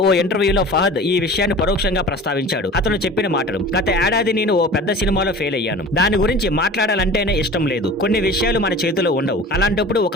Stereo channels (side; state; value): both; normal; correlation 0.39